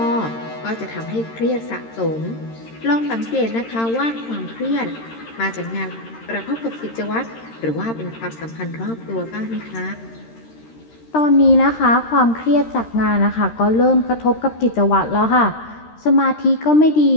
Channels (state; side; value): late; right; 13 ms